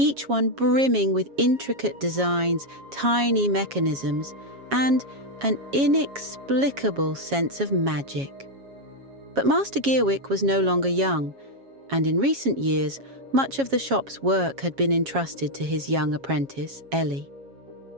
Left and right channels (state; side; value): late; left; 7.3 ms